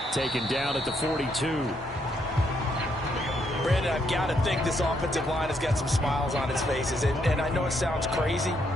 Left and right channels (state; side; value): normal; both; correlation 0.74